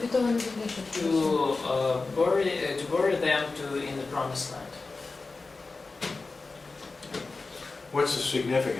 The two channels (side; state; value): right; quieter; 3.8 dB